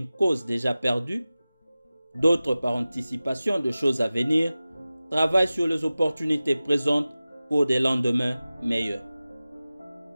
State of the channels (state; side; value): inverted; both; correlation -0.96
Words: cause déjà perdue, d'autres, par anticipation de choses à venir, travaillent sur les opportunités présentes pour des lendemains meilleurs.